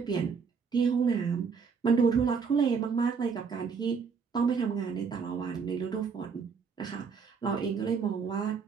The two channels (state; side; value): quieter; left; 5.7 dB